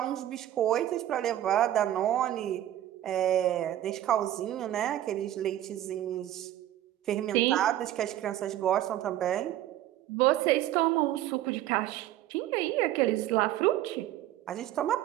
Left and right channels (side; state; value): left; quieter; 13.0 dB